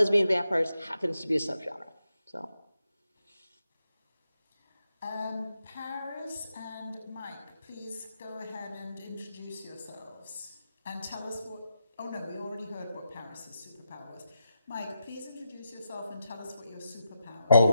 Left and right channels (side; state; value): both; inverted; correlation -0.86